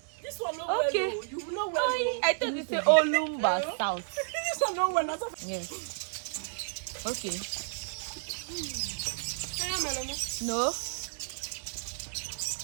This one no Okay. well. You know well. I thought you say Olumba South. This one no well. Yes. Okay. Anamelum. No.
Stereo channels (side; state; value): left; silent; 55 dB below the other